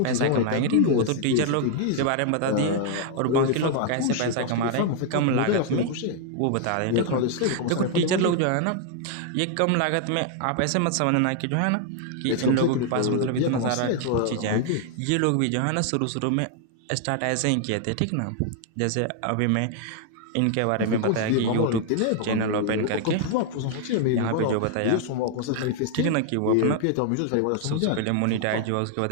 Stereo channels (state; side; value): different; both; correlation 0.00